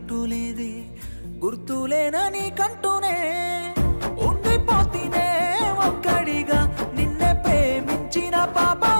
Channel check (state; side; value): inverted; both; correlation -1.00